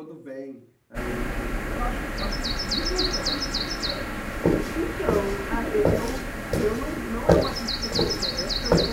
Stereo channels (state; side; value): identical; both; correlation 1.00